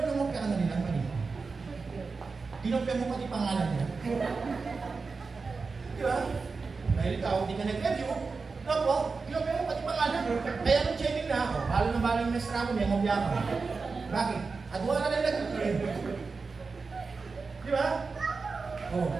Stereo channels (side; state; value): left; quieter; 4.5 dB